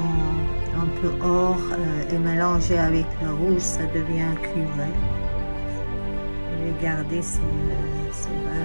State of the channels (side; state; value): both; inverted; correlation -1.00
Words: un peu or et mélangés avec le rouge, ça devient cuivré. Regardez ces